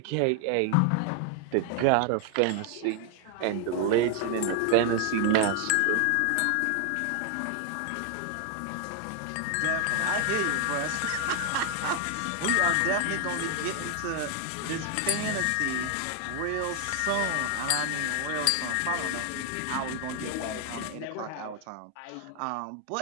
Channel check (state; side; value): different; both; correlation 0.01